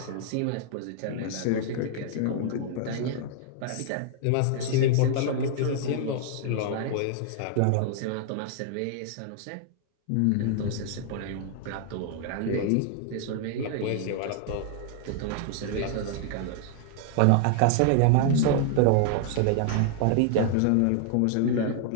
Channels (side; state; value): both; different; correlation 0.00